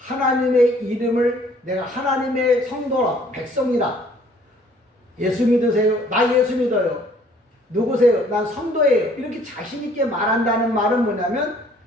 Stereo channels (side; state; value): both; normal; correlation 0.58